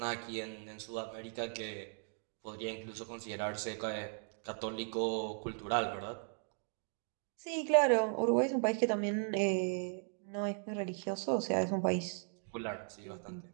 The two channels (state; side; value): silent; left; 53 dB below the other